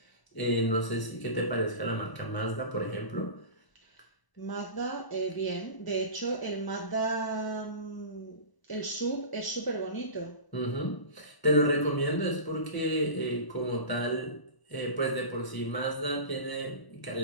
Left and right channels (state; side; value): late; right; 1.0 ms